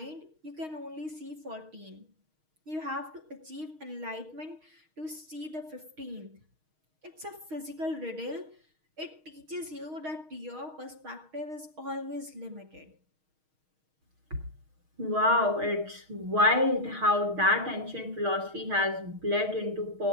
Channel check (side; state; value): left; late; 6.4 ms